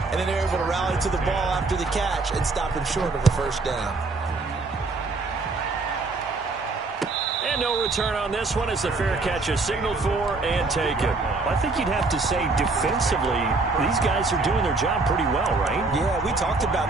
then they're able to rally to the ball after the catch and stop him short of a first down. And no return on this one as the fair catch is signaled for and taken. I think you'd have to say defensively, these guys are doing their job pretty well, right? Yeah, we talked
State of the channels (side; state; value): left; quieter; 3.7 dB